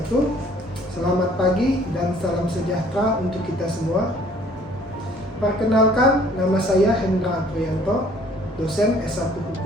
Selamat pagi dan salam sejahtera untuk kita semua. Perkenalkan, nama saya Hendra Aprianto, dosen S1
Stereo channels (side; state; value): both; normal; correlation 0.57